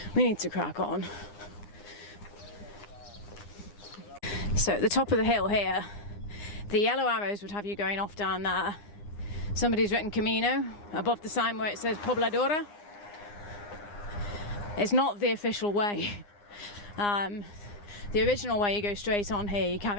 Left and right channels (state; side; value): late; right; 9.7 ms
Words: we need to crack on. So at the top of the hill here, the yellow arrows would have you going off down there. Somebody's written Camino above the sign where it says Pobladora. It's not the official way. The original way, you go straight on here, you